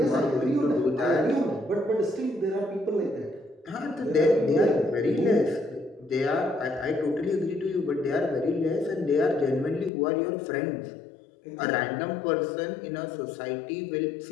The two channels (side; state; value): right; drops out; at 9.9 s